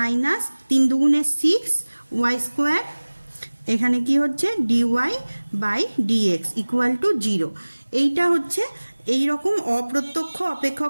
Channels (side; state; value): both; inverted; correlation -1.00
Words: 3 দুগুণে 6y², এখানে কি হচ্ছে dy/dx ইকুয়াল টু 0। এইটা হচ্ছে এই রকম অপ্রত্যক্ষ